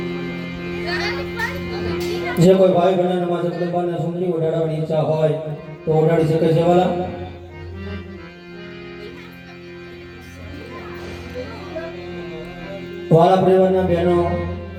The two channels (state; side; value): identical; both; correlation 1.00